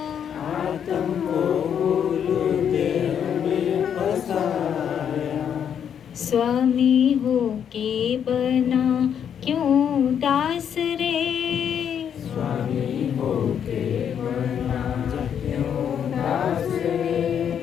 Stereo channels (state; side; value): quieter; right; 8.4 dB